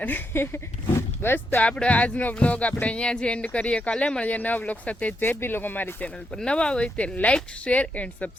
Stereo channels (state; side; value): normal; both; correlation 0.81